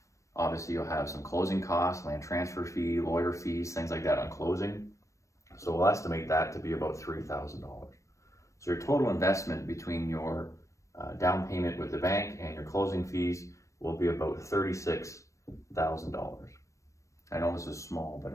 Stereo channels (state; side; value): late; right; 0.15 ms